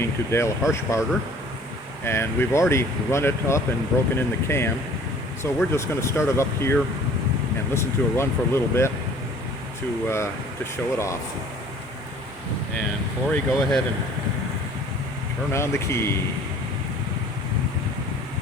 to Dale Harshbarger, and we've already run it up and broken in the cam, so we're just going to start it up here and listen to it run for a little bit to show it off. And Corey, go ahead and turn on the key.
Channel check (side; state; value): both; normal; correlation 0.51